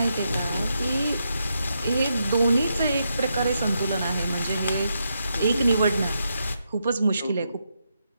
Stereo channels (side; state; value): both; inverted; correlation -0.82